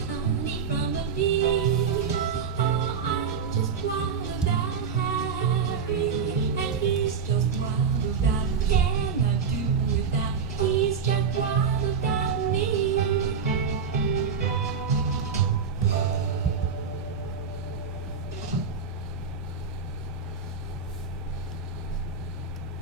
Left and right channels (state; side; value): quieter; left; 6.0 dB